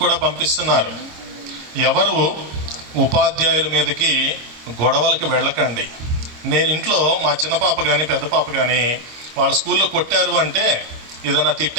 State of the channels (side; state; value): left; late; 26 ms